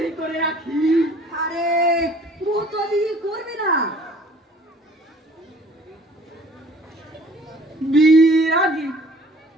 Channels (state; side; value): normal; both; correlation 0.53